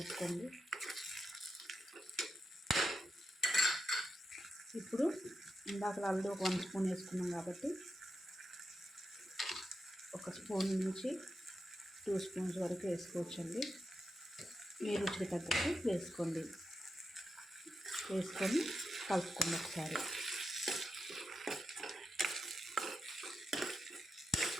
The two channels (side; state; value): both; normal; correlation 0.87